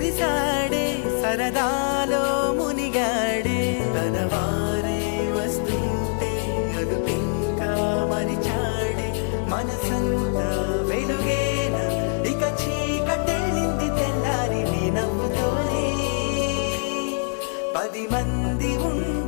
సరదాలో మునిగాడే తన వారే వస్తుంటే అదుపింకా మరిచాడే మనసంతా వెలుగేన ఇక చీకటెళ్ళింది తెల్లారి నీ నవ్వుతోనే 10 మంది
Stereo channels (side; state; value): right; silent; digital silence